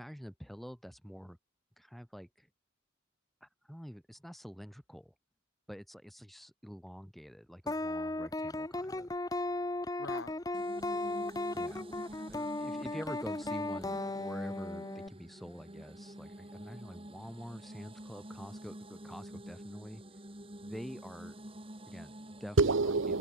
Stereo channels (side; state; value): both; normal; correlation 0.38